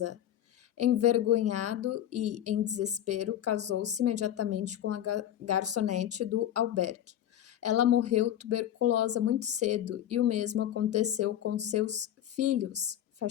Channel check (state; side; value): quieter; right; 11.2 dB